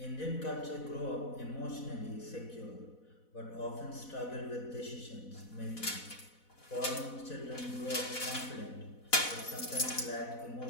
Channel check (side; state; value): right; late; 4.1 ms